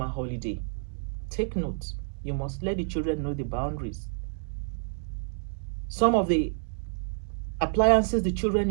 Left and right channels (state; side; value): silent; left; digital silence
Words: holiday. Take note. You must let the children know the boundaries. Some of the appliances the children